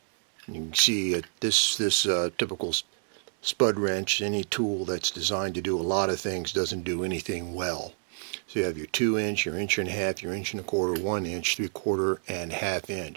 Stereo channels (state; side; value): silent; left; digital silence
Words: You can see this typical spud wrench, any tool that's designed to do a lot of things doesn't do anything well. So you have your 2-inch, your 1.5 inch, your 1.25 inch, 1 inch, 3/4, and 1/2